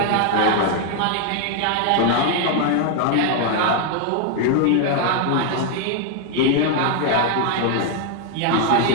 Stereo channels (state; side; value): different; both; correlation 0.00